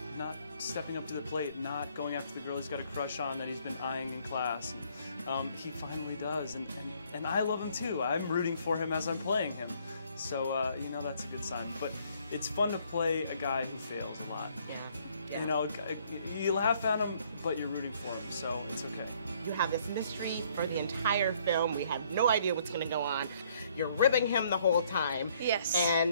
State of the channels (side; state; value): both; inverted; correlation -0.64